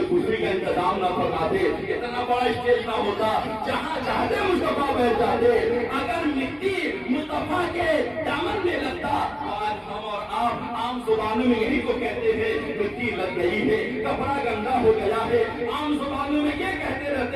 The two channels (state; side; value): identical; both; correlation 1.00